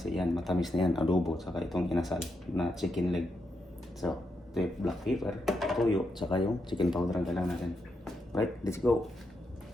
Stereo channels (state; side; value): normal; both; correlation 0.83